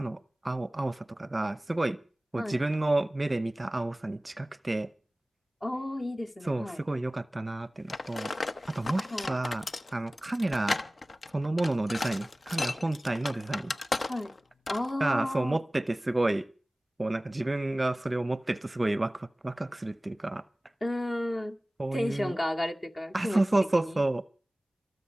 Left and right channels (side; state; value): both; normal; correlation 0.98